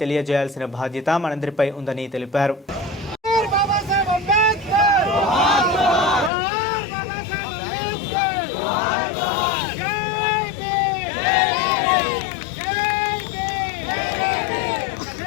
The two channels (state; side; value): drops out; right; at 6.3 s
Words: తెలియజేయాల్సిన బాధ్యత మనందరిపై ఉందని తెలిపారు.